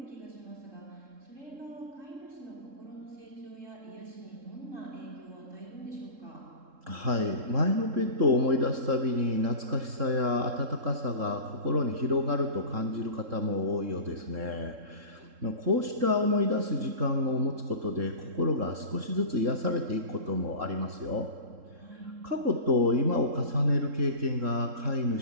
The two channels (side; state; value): left; late; 3.7 ms